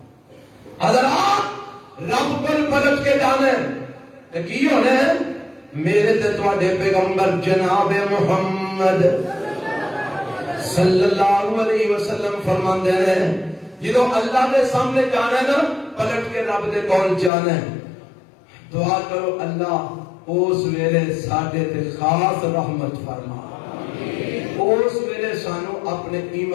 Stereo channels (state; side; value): drops out; right; at 17.3 s